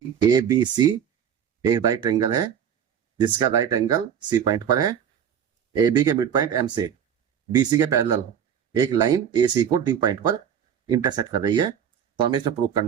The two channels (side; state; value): left; quieter; 8.6 dB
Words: A B C एक right angle है जिसका राइट एंगल सी पॉइंट पर है। ए बी के मिड पॉइंट एम से बी सी के पैरेलल एक लाइन ए सी को डी पॉइंट पर इंटरसेक्ट कर रही है। तो हमें इसमें प्रूव